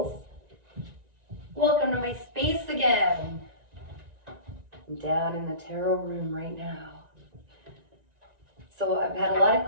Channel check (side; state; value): left; late; 1.9 ms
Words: Welcome to my space again. I'm down in the tarot room right now. So I've had a lot